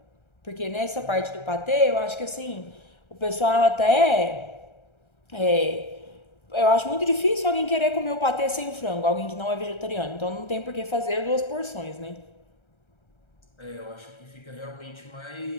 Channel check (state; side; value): late; right; 1.3 ms